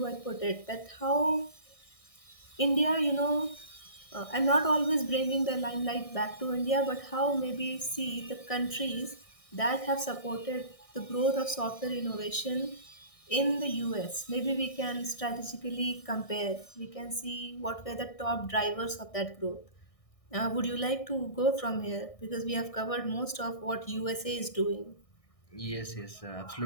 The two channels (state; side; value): late; right; 1.6 ms